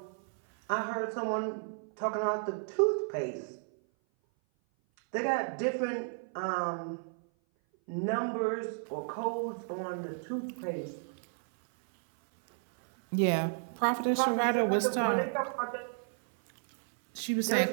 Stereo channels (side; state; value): left; silent; 56 dB below the other